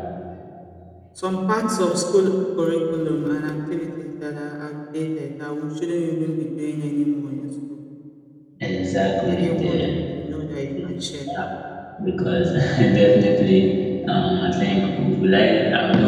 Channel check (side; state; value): both; identical; correlation 1.00